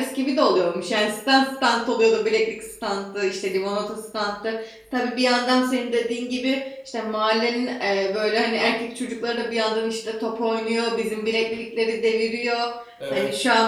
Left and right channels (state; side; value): identical; both; correlation 1.00